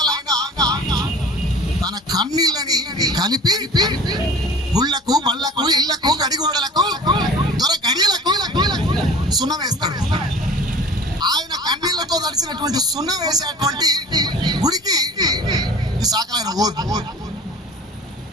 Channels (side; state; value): both; normal; correlation 0.42